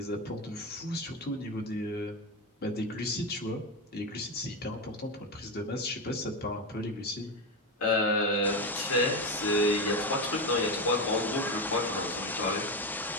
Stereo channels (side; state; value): both; normal; correlation 0.14